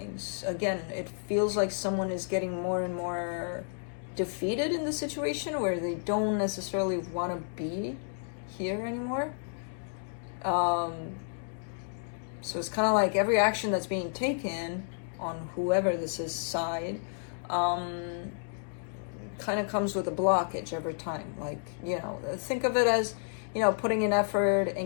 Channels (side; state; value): right; silent; digital silence